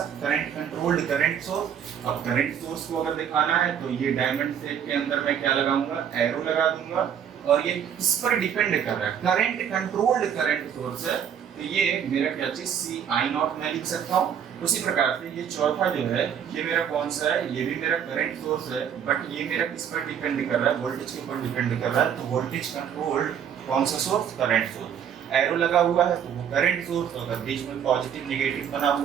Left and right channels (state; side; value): quieter; left; 8.5 dB